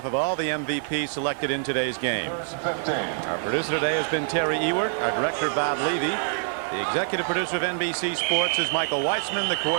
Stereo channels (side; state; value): left; silent; digital silence